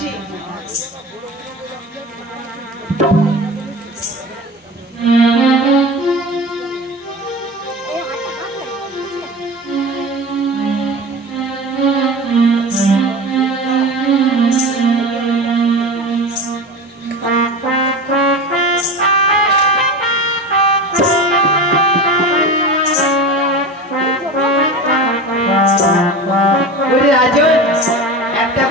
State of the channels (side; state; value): both; normal; correlation 0.30